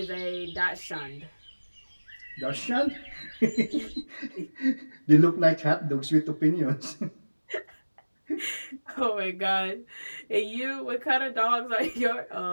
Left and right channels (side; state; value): both; inverted; correlation -1.00